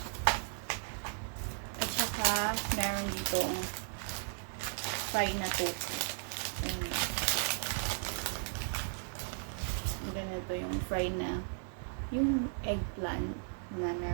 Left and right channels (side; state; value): left; silent; 54 dB below the other